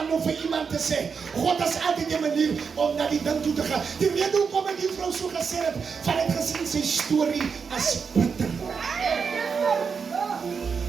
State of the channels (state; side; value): quieter; left; 5.8 dB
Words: om vir iemand te sê, God is altyd 'n manier om na die ding toe te gaan. Die rede hoekom ek die vrou so gesê het, van het gesien sy storie as bitter.